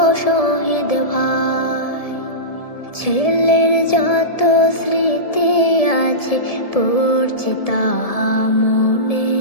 শহীদ ভাই, ছেলের যত স্মৃতি আছে পড়ছে তাহা মনে,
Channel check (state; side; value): late; right; 1.7 ms